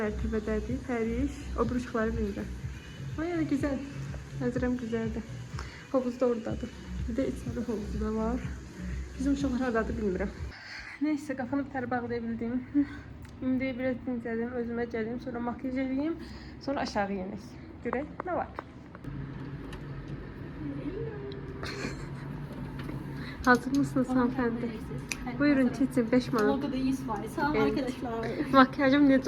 Pərviş o buruşqları birində. Ama yani güzel. Nəzirəm güzeldir. Havuz da oradadır. Bir de içəri havuzu da var. Bizim uşaqlar haradadır bilmirəm. Neyse kafanı bir tər bağlayabildim. İndi biraz dincəlim, özümə gəlim, sonra makyaj edeyim, sonra aşağı yenik. Görək nə var? Hazır mısınız hanımefendi? Buyurun çetin 5 manat. Logoda 100 var. Sağ olun arkadaşlar. Makyajım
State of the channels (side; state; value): both; identical; correlation 1.00